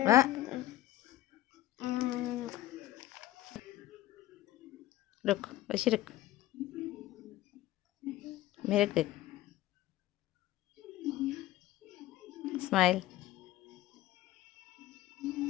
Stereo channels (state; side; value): quieter; right; 14.9 dB